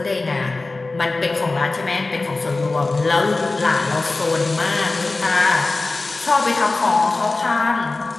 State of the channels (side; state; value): right; quieter; 3.4 dB